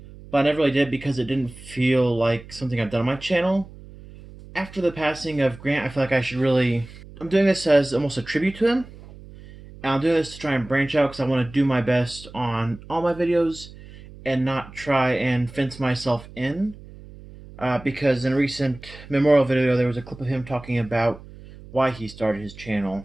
but I never really did because it didn't feel like something I've done on my channel. After the passing of Grant, I feel like I should really. I'm doing this as almost a tribute to him. And I'm doing this to try and branch out because I want to do my best on all my videos and not try and fence myself in. Because in a recent memorial video, there was a clip of him talking about why he started his channel.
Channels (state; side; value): noise; right; hum, 18 dB below the sound